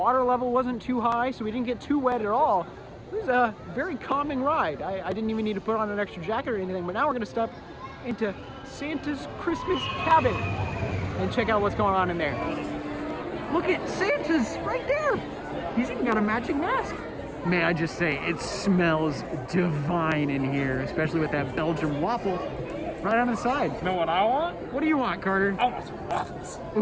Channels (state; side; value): identical; both; correlation 1.00